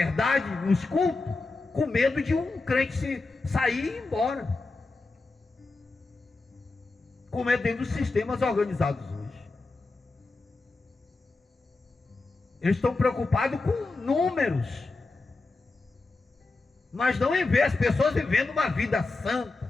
nos cultos, com medo de um crente sair e ir embora. Como é dentro dos sistemas organizados hoje. Eles estão preocupados com números, mas não em ver as pessoas vivendo uma vida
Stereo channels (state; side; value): quieter; right; 3.5 dB